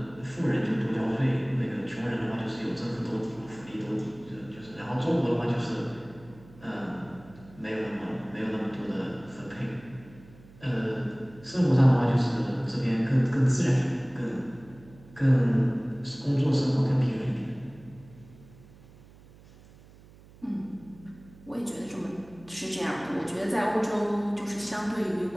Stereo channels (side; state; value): right; noise; hum, 23 dB below the sound